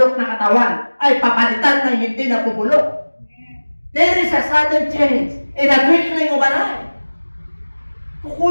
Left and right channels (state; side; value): inverted; both; correlation -1.00